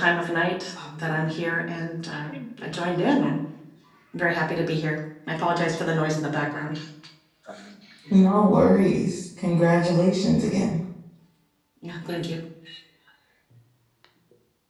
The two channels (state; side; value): identical; both; correlation 1.00